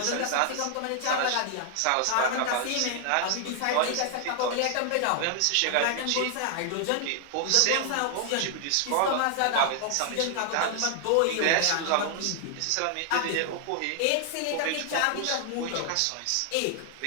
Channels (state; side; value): different; both; correlation 0.00